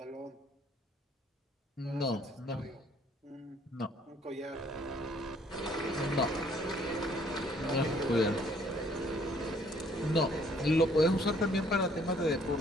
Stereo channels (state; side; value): normal; both; correlation 0.62